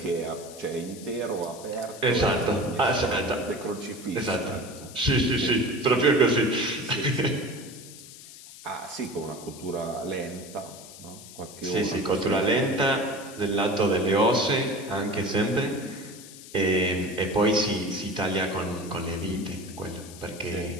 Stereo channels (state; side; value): noise; left; hiss, 16 dB below the sound